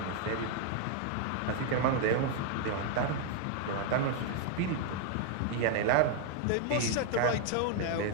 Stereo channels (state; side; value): different; both; correlation 0.00